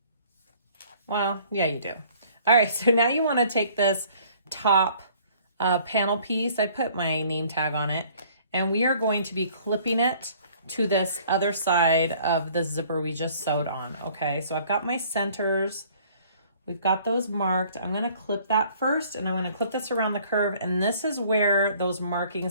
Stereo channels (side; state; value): both; inverted; correlation -0.56